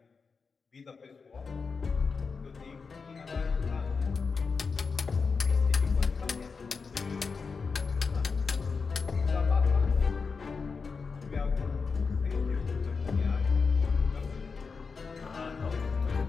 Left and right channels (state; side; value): quieter; right; 5.0 dB